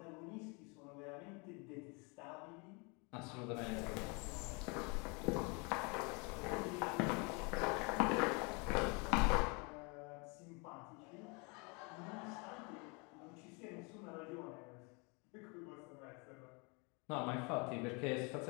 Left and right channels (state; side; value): quieter; right; 31.1 dB